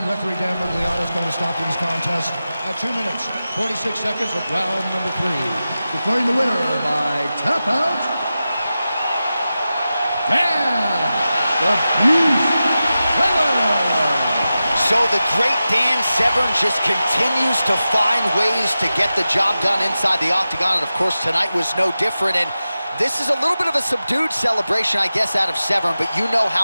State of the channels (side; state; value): both; inverted; correlation -0.93